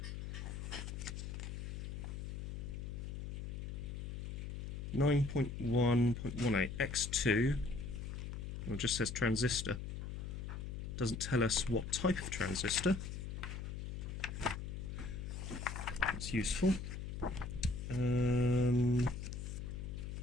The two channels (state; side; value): noise; left; hum, 6 dB below the sound